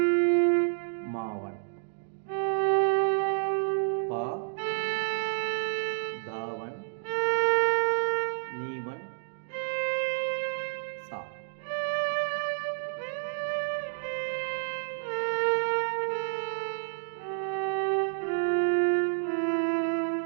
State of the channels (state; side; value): silent; left; digital silence